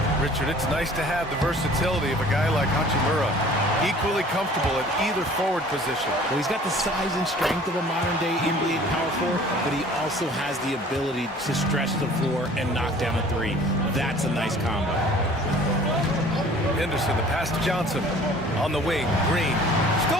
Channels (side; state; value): both; normal; correlation 0.50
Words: Richard, it's nice to have the versatility of a guy like Hachimura. Equally comfortable at either forward position. Well, he's got the size and strength of a modern-day NBA power forward, but he also has the ability to stretch the floor and knock down a 3. That's a nice combo. Henderson, the pass to Johnson. On the wing, Green.